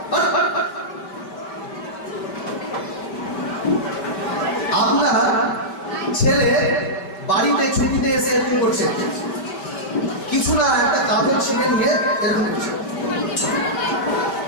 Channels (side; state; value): right; late; 5.2 ms